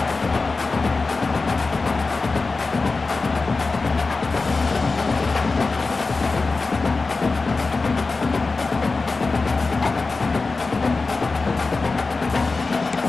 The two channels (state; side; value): quieter; right; 3.9 dB